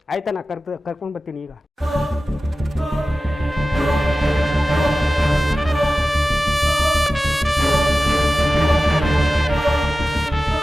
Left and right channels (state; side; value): normal; both; correlation 0.95